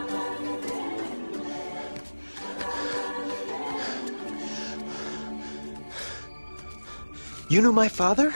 You knew my father?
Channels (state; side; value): inverted; both; correlation -1.00